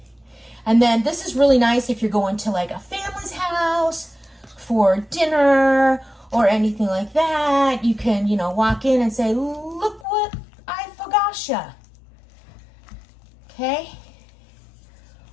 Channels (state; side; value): drops out; right; at 10.1 s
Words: And then this is really nice if you're going to like a family's house for dinner or anything like that. You can, you know, walk in and say, look what I focaccia. Okay?